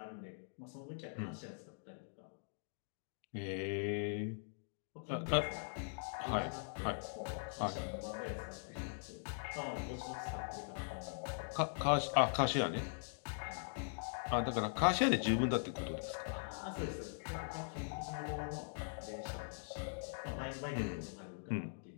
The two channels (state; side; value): silent; right; digital silence